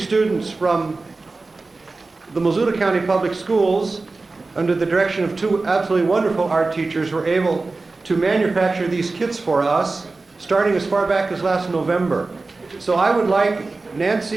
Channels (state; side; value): quieter; left; 3.6 dB